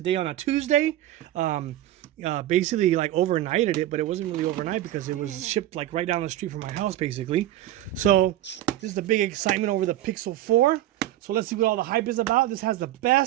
on a Tuesday. Basically like overnighted it, but it wasn't really overnight because it was shipped like right down the street from my house basically. So this is the big excitement over the Pixel 4. So let's see what all the hype is about. This has the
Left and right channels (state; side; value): quieter; left; 13.9 dB